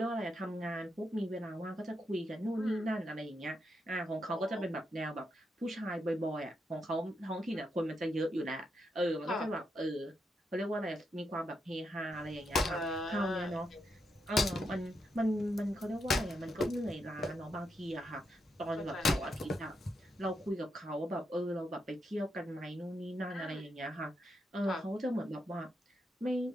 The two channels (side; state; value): both; normal; correlation 0.82